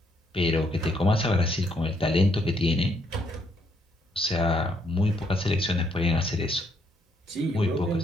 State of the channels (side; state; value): both; normal; correlation 0.72